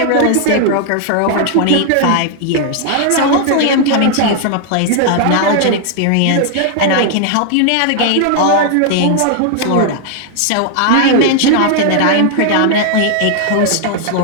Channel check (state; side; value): different; both; correlation 0.00